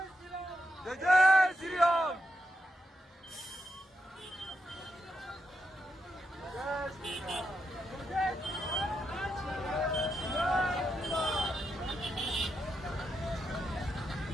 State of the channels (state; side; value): normal; both; correlation 0.84